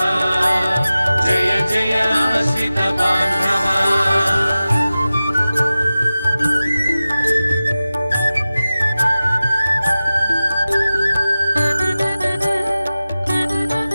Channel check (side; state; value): both; inverted; correlation -0.96